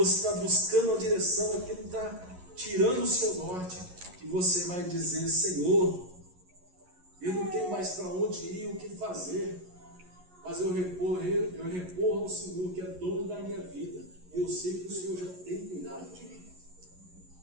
está buscando a direção, aquilo que está tirando o seu norte, e você vai dizer: Senhor, eu não tenho mais para onde ir, o que fazer, mas eu recorro ao Senhor, que é dono da minha vida, e eu sei que o Senhor já tem cuidado de mim.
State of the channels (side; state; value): left; late; 11 ms